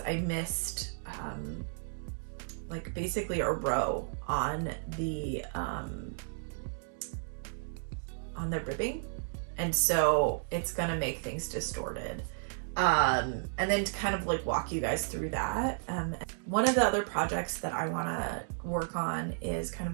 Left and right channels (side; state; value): left; silent; digital silence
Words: I missed like basically a row on the ribbing, and so it's gonna make things distorted. And then to kind of like walk you guys through that, one of the other projects that I want to work on is kind